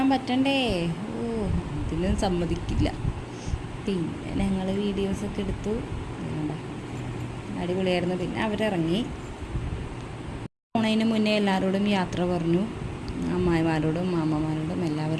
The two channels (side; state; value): both; identical; correlation 1.00